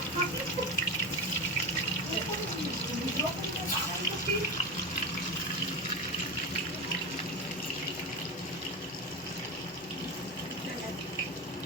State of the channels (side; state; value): both; normal; correlation 0.21